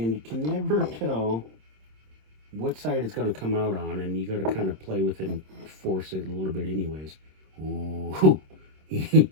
you can never tell what side it's going to come out on, and you got to kind of play with it and force it a little bit anyways. Ooh.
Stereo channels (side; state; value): left; late; 26 ms